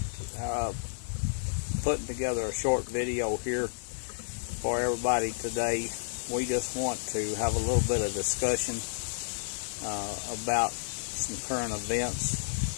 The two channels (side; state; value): right; silent; 57 dB below the other